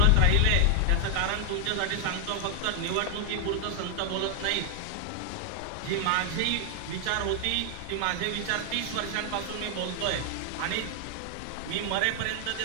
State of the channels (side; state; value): both; different; correlation 0.00